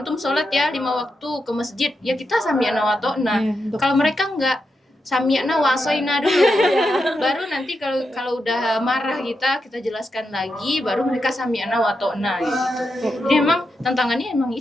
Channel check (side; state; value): both; normal; correlation 0.86